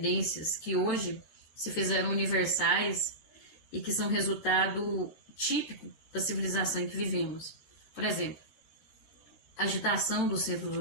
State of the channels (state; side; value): late; right; 13 ms